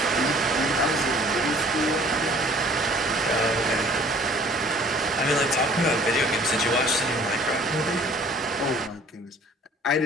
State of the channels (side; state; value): both; normal; correlation 0.53